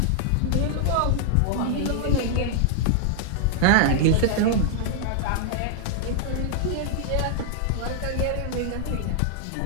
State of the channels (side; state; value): both; different; correlation -0.01